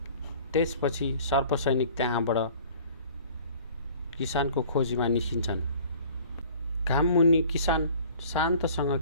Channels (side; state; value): both; inverted; correlation -0.49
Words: त्यसपछि सर्प सैनिक त्यहाँबाट किसानको खोजीमा निस्किन्छन्। घाममुनि किसान शान्तसँग